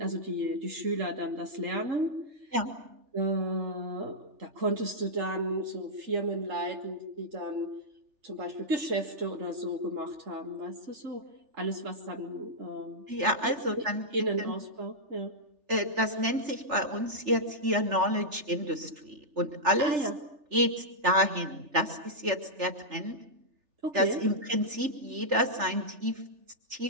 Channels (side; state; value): left; late; 3.4 ms